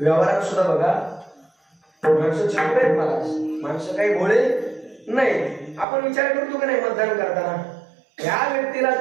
सुद्धा बघा, माणसं चुकत आहेत महाराज, माणसं काही भोळे नाही. आपण विचार करतो की नाही मतदान करताना, या व्यक्तीला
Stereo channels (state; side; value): drops out; left; at 5.9 s